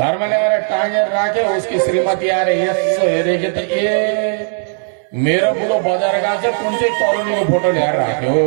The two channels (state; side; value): silent; left; 63 dB below the other